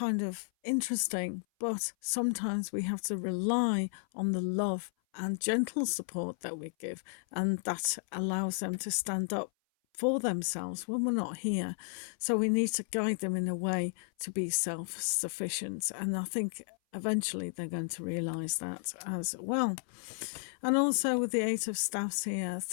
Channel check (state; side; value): silent; right; 56 dB below the other